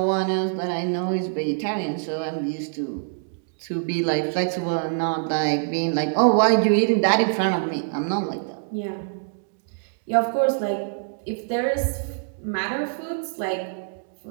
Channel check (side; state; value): left; silent; digital silence